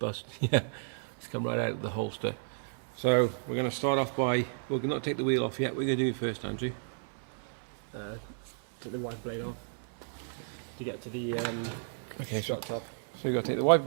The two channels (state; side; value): silent; left; 56 dB below the other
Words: Yeah, it's come right out of the holster. So we're going to start off by, we're not take the wheel off yet. We're going to do it first, Andrew. Take the wiper blade off to get to the shot top. So you've got to take the wiper